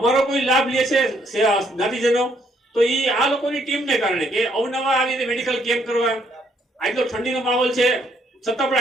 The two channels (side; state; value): both; normal; correlation 0.70